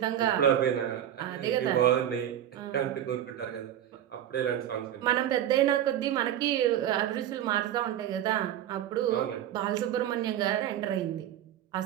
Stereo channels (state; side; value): quieter; left; 11.2 dB